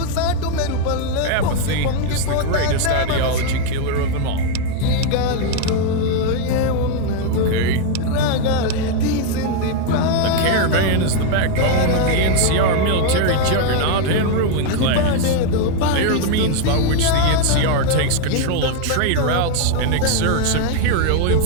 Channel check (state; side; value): different; both; correlation 0.00